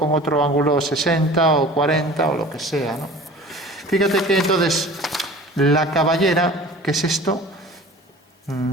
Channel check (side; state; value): both; normal; correlation 0.42